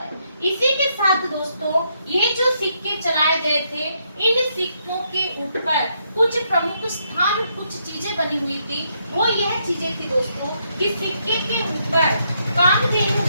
इसी के साथ दोस्तों ये जो सिक्के चलाए गए थे, इन सिक्कों के ऊपर कुछ प्रमुख स्थान, कुछ चीजें बनी हुई थी। वो यह चीजें थी दोस्तों कि सिक्के के ऊपर कामधेनु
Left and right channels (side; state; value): both; inverted; correlation -0.76